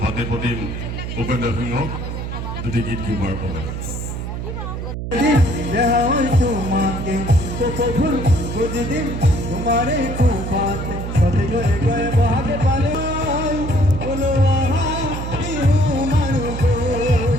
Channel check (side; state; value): right; noise; hum, 5 dB below the sound